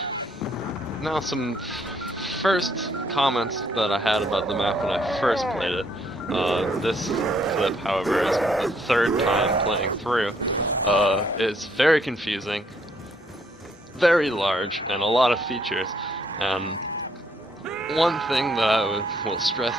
now some first comments that I had about the map when I first played it. This clip, however, is the 3rd time playing through. It's very confusing, very large, and a lot of features. And one thing that I will stress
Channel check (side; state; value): both; normal; correlation 0.69